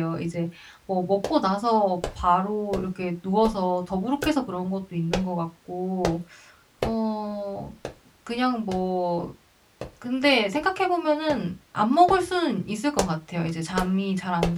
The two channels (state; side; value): identical; both; correlation 1.00